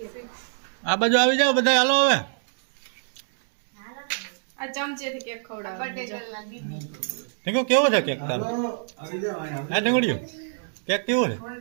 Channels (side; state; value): left; silent; digital silence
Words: આ બાજુ આવી જાઓ બધા. હાલો હવે આ ચમચેથી કેક ખવડાવો ઢીંગુ કેવો છે કેક તારો? હા ઢીંગુડિયું કેક કેવો છે?